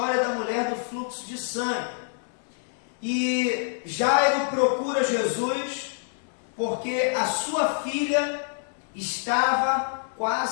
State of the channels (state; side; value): silent; right; digital silence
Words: da mulher do fluxo de sangue. E Jairo procura Jesus porque a sua filha estava